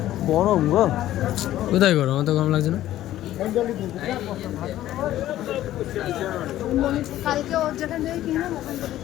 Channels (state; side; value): quieter; right; 13.7 dB